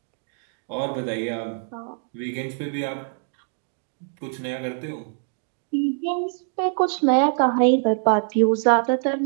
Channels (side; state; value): left; silent; digital silence